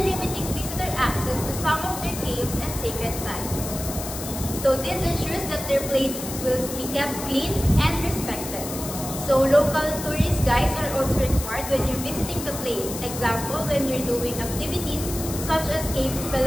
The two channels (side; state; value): left; noise; hiss, 8 dB below the sound